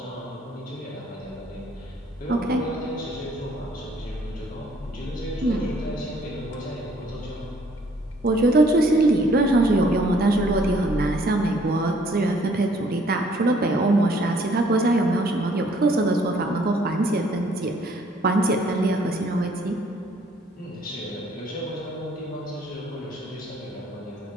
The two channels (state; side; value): normal; both; correlation 0.62